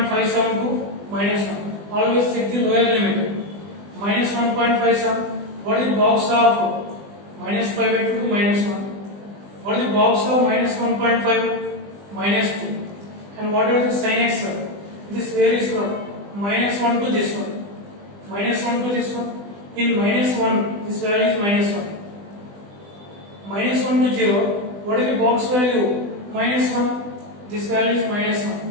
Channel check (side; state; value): left; late; 20 ms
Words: to minus 1. Always check the lower limit. Minus 1.57. What is the box of minus pi by 2 to minus 1? What is the box of minus 1.5? Minus 2. And what are the sin x? This varies from minus 1 to this one. Minus 1 to this one. In minus 1, this value is minus 1. Minus 1 to 0. What is the box value? Minus 1. This value is minus 1.